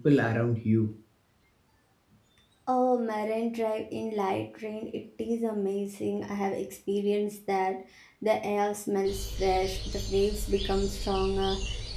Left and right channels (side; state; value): both; identical; correlation 1.00